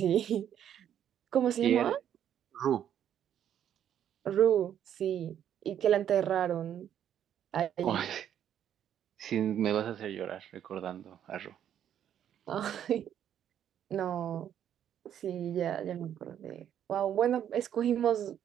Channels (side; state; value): left; quieter; 9.9 dB